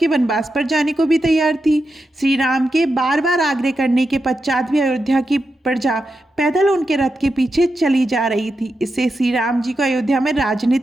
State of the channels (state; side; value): normal; both; correlation 0.88